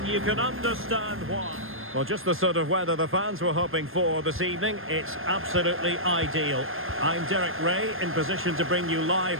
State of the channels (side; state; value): left; late; 0.60 ms